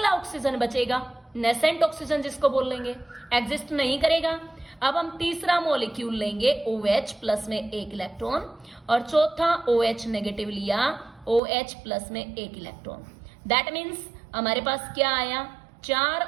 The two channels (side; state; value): left; drops out; at 11.4 s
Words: ऑक्सीजन बचेगा, नेसेंट ऑक्सीजन जिसको बोल लेंगे, एग्जिस्ट नहीं करेगा। अब हम तीसरा मॉलिक्यूल लेंगे OH प्लस में एक इलेक्ट्रॉन, और चौथा OH नेगेटिव लिया, OH प्लस में एक इलेक्ट्रॉन। दैट मीन्स हमारे पास क्या आया,